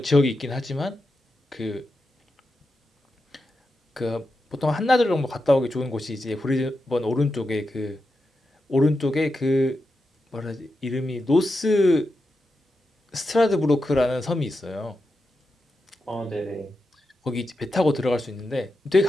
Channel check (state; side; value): normal; both; correlation 0.88